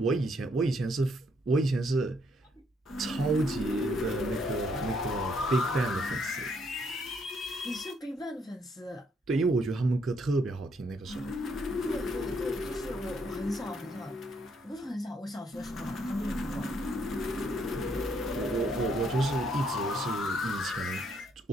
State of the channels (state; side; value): normal; both; correlation 0.71